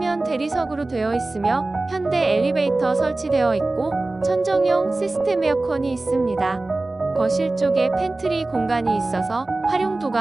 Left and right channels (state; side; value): quieter; left; 3.1 dB